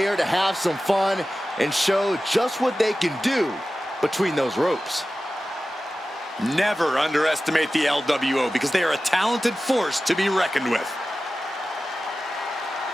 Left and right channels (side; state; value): both; normal; correlation 0.95